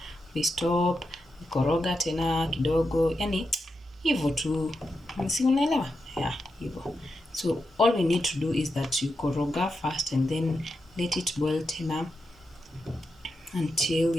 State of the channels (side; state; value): both; normal; correlation 0.87